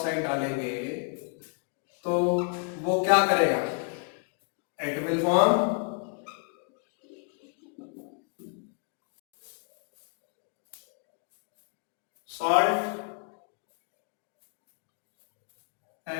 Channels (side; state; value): right; quieter; 39.3 dB